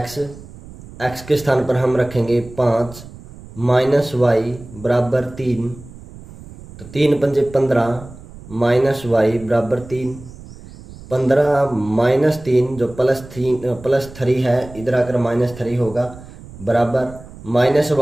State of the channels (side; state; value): right; noise; rumble, 17 dB below the sound